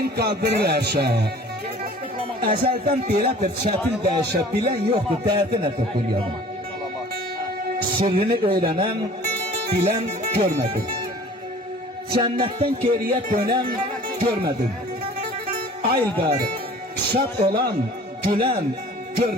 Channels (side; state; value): both; normal; correlation 0.47